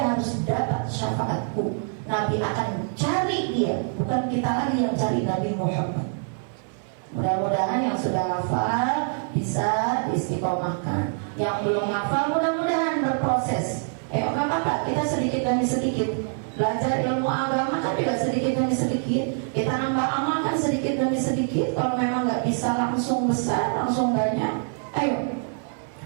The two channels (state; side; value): silent; left; 61 dB below the other